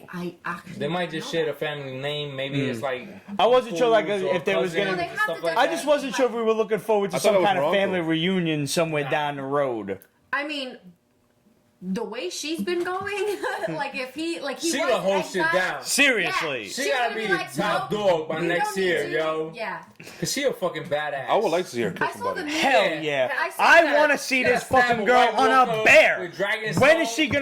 I actually. They might just know share that. a family name. Maybe it's like. I wasn't sure like fools or if there was cousins gonna. No, they and have stuff to like I that. just wasn't sure if we were looking forward to I thought it some was kind of her family uncle. reunion somewhere down the road. I mean, the way she's been going, like if he She was gonna hold shit exiled- down. Seriously. Yeah, She she's gotta gonna be the like, top no, dog by we next don't need year, to. yo. Yeah. Cause she a fucking badass. I would like to see her I kiss saw the somebody. meme. Hell Yeah. yeah! I saw I that. want to see Yeah, this stab fucking a girl White on a Walker bear. with dragon When is soul. she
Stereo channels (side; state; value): both; identical; correlation 1.00